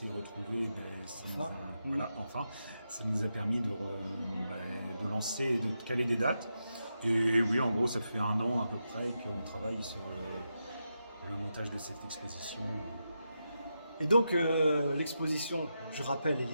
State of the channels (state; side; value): inverted; both; correlation -0.86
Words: retrouvées, ça nous a permis de lancer et de caler des dates. Et oui, en gros, ça fait 1 an à peu près qu'on travaille sur le montage de cette exposition. Et donc l'exposition, je rappelle,